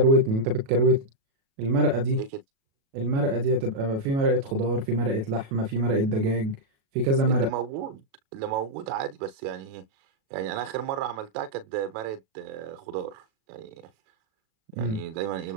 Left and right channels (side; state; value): left; late; 37 ms